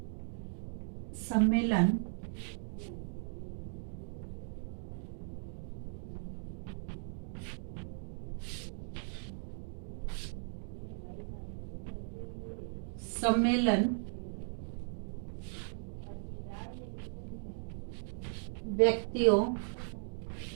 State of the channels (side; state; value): left; silent; digital silence